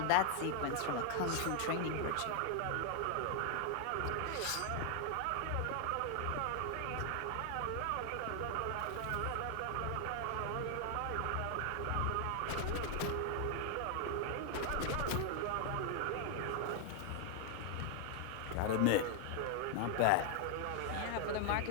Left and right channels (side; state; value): both; different; correlation 0.00